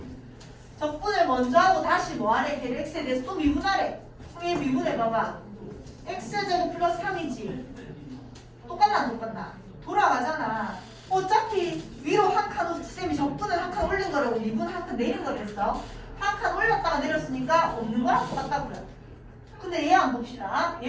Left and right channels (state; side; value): identical; both; correlation 1.00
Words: 적분을 먼저 하고 다시 뭐하래? 걔를 x에 대해서 또 미분하래. 그럼 얘 미분해봐봐. x제곱 플러스 3이지. 똑같나 안 똑같나? 돌아가잖아. 어차피 위로 한 칸, 쌤이 적분을 한 칸 올린 거라고 미분 한 칸 내린 거랬어. 한 칸 올렸다가 내렸으니까 없는 거랑 똑같다고요. 근데 얘 한번 봅시다.